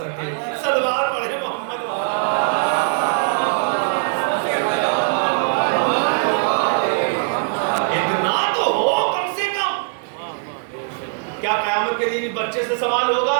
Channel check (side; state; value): left; silent; 60 dB below the other